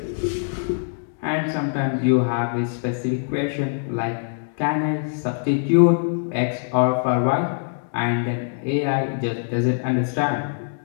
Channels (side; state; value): right; silent; digital silence